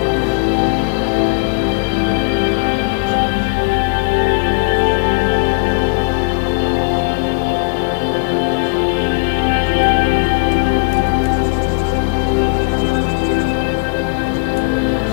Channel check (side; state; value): right; quieter; 32.5 dB